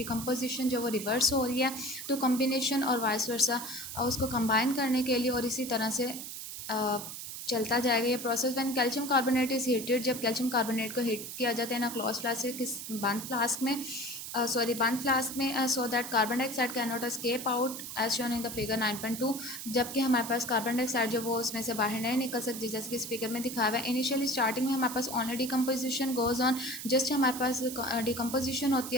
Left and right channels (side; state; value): right; noise; hiss, 8 dB below the sound